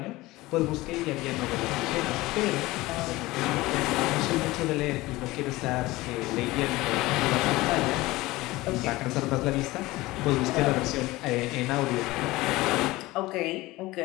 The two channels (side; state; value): right; quieter; 19.5 dB